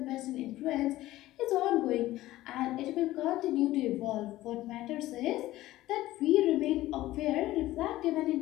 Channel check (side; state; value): right; quieter; 16.1 dB